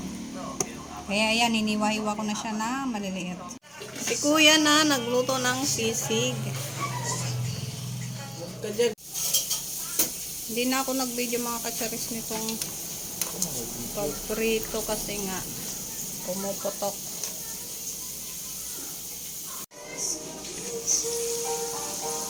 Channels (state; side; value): identical; both; correlation 1.00